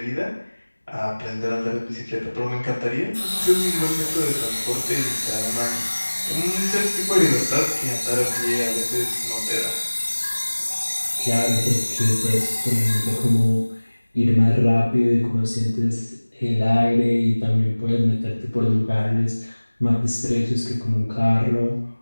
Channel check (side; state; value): both; inverted; correlation -1.00